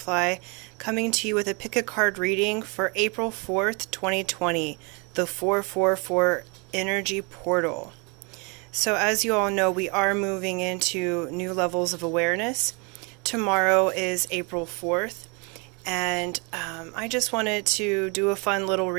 coming to you with a pick a card reading for April 4th, 2020, the 444 Energy Portal. So as you all know, we are moving into new levels of awareness. Tomorrow is April 4th, and I just wanted to do a fun little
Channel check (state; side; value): quieter; left; 31.5 dB